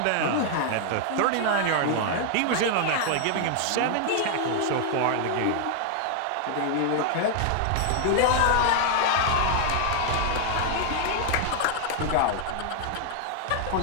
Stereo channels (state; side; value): different; both; correlation 0.00